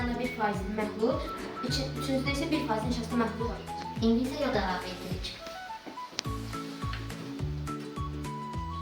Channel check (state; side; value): identical; both; correlation 1.00